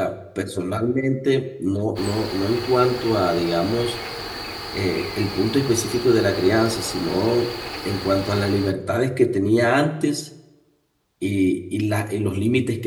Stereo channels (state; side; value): identical; both; correlation 1.00